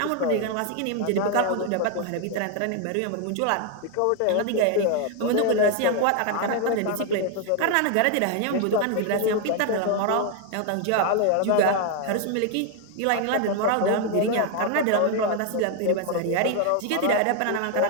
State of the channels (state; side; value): different; both; correlation 0.01